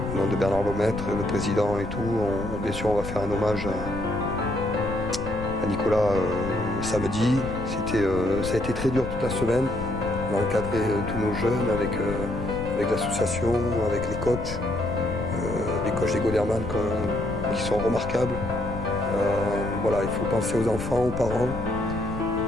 au nom de Bernard Lemaitre, le président et tout, bien sûr on va faire un hommage à Nicolas samedi. Ça a été très dur toute la semaine. On a encadré tous nos jeunes avec l'association, avec les coachs des Goderman qui sont remarquables. Voilà, il faut penser aux enfants, aux parents.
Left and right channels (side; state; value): left; noise; rumble, 8 dB below the sound